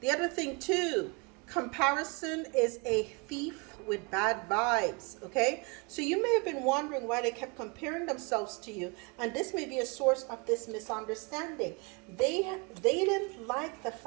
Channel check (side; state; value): left; quieter; 30.3 dB